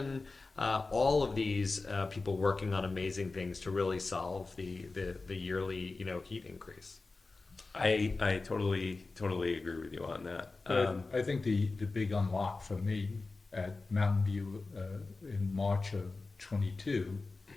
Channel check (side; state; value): right; quieter; 3.7 dB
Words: All of these people working on amazing things to really solve the yearly heat increase. I totally agree with you on that. I think the big unlock for me at Mountain View in March of 22